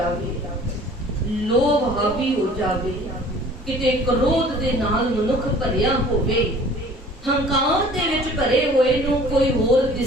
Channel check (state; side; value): normal; both; correlation 0.49